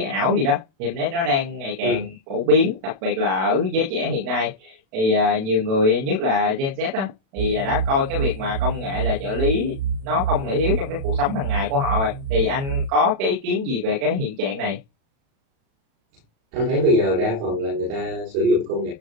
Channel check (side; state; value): left; late; 36 ms